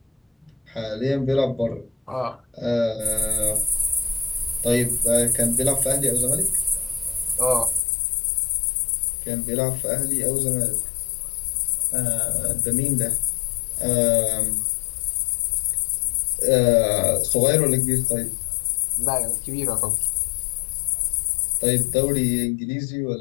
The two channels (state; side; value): drops out; right; at 7.8 s